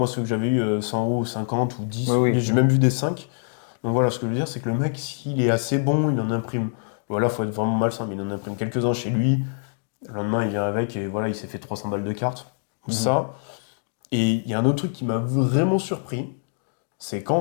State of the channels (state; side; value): silent; right; digital silence